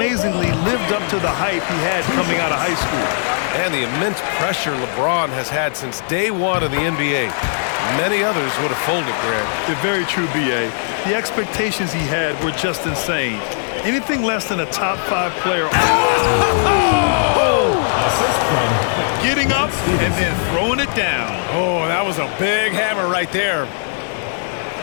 lived up to the hype he had coming out of high school. And the immense pressure LeBron has had since day one of the NBA. Many others would have folded, Grant. They're very true, B.A. The expectations he had were just insane. Anything less than a top 5 player. Getting up and then throwing it down. Oh, that was a big hammer right there.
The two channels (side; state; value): right; silent; digital silence